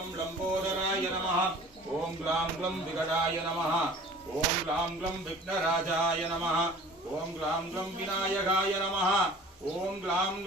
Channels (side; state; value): both; normal; correlation 0.45